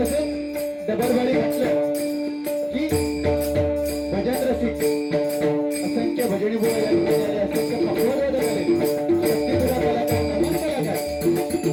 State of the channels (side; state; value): both; identical; correlation 1.00